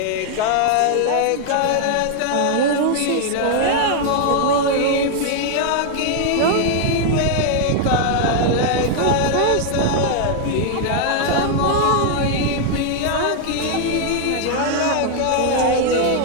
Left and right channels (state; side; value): different; both; correlation 0.00